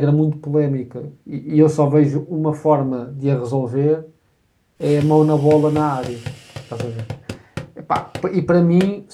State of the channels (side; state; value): both; identical; correlation 1.00